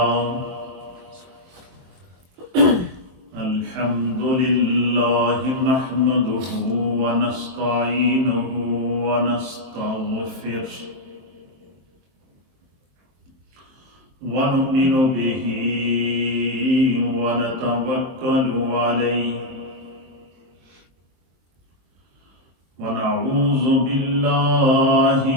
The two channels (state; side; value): late; left; 22 ms